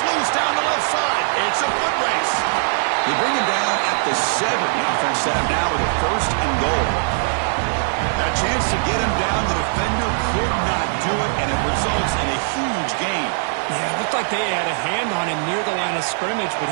loose down the left side. It's a foot race. They bring him down at the 7. The offense set up now with a first and goal Chance to get him down. The defender could not do it, and it results in a huge gain. Yeah, it looked like they had a hand on him near the line of scrimmage, but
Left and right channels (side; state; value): left; silent; digital silence